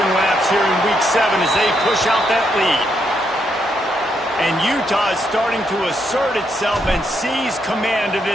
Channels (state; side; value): normal; both; correlation 0.78